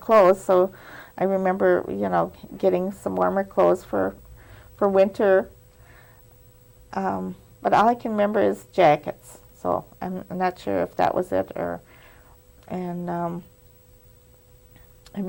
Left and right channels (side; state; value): both; identical; correlation 1.00